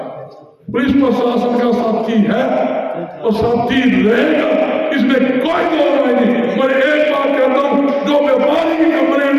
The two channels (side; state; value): both; identical; correlation 1.00